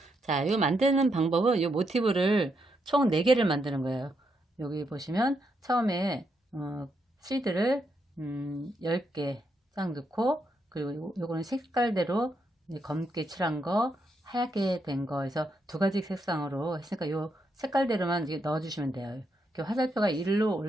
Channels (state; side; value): normal; both; correlation 0.80